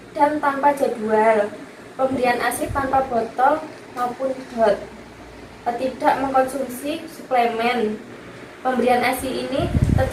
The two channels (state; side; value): identical; both; correlation 1.00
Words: dan tanpa jadwal. Pemberian ASI tanpa botol maupun dot. Tidak mengkonsumsi suplemen. Pemberian ASI ini